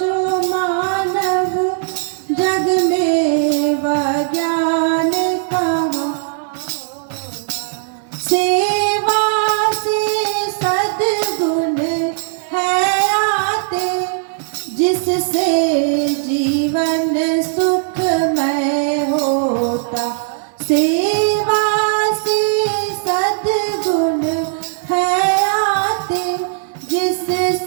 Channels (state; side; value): silent; left; digital silence